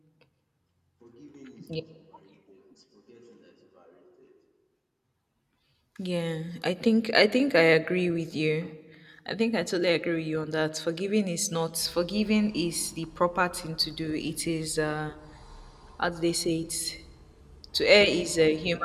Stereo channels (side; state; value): both; identical; correlation 1.00